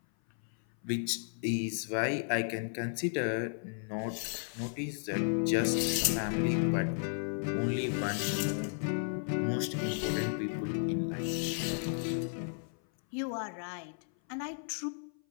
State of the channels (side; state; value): right; silent; 55 dB below the other